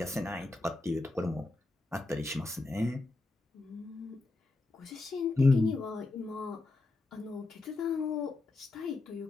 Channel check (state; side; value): quieter; right; 3.1 dB